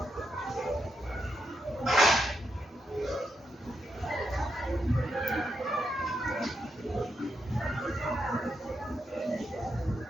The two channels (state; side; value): normal; both; correlation 0.82